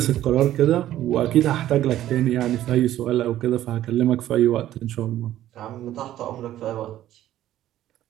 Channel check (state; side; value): quieter; left; 13.0 dB